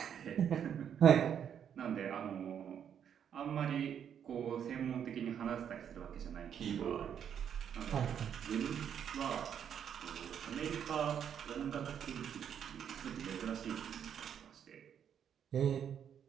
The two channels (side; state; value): left; quieter; 8.6 dB